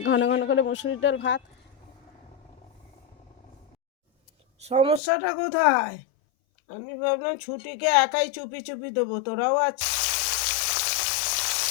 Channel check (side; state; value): right; drops out; at 5.0 s